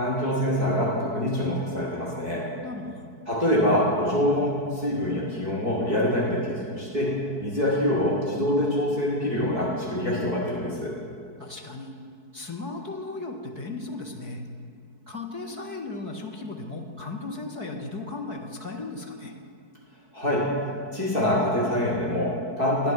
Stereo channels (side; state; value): left; late; 4.6 ms